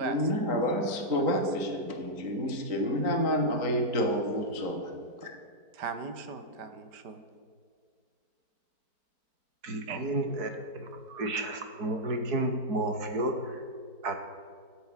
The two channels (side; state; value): left; late; 4.5 ms